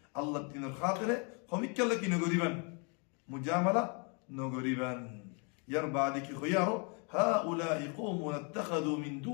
الله الدين الخاطرة خميك لكي نقريبا مجاملة نغريبان يربع خيارو هؤلاء قوم اتخذوا من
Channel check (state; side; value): quieter; right; 35.9 dB